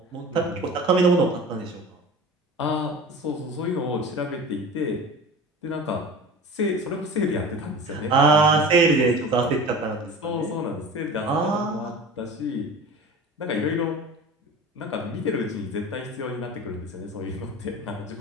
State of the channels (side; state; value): both; normal; correlation 0.36